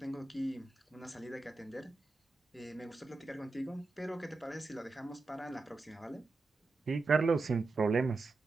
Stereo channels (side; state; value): left; quieter; 3.5 dB